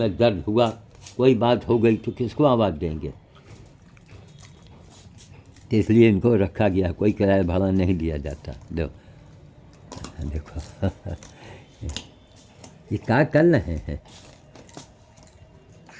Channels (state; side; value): identical; both; correlation 1.00